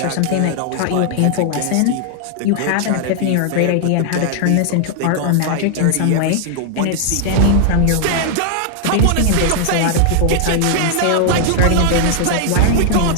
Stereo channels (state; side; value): different; both; correlation 0.00